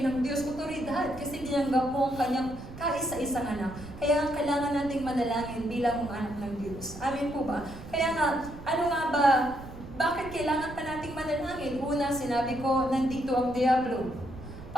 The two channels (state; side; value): noise; right; rumble, 14 dB below the sound